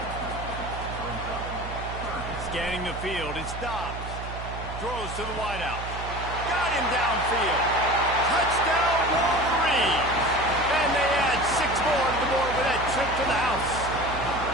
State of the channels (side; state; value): right; noise; hum, 8 dB below the sound